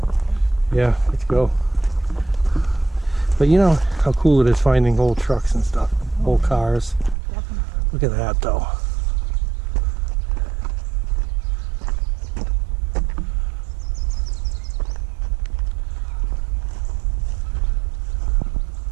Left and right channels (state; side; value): drops out; left; at 7.2 s